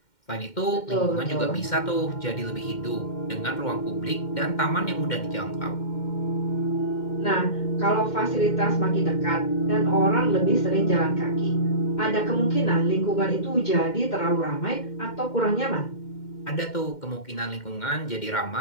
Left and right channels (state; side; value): late; right; 2.1 ms